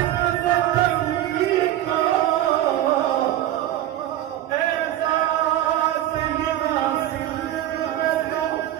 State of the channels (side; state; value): left; quieter; 13.0 dB